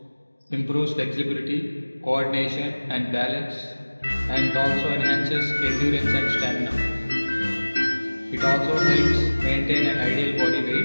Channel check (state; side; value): inverted; both; correlation -1.00